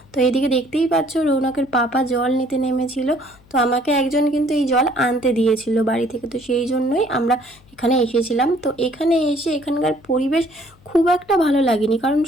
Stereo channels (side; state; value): left; noise; hum, 29 dB below the sound